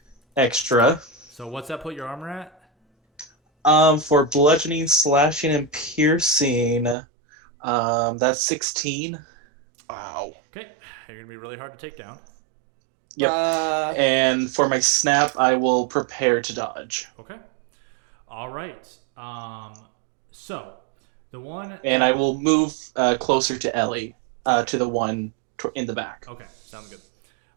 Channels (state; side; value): drops out; left; at 7.0 s